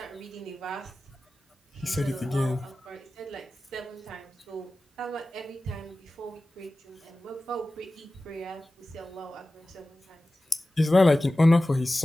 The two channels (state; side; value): normal; both; correlation 0.96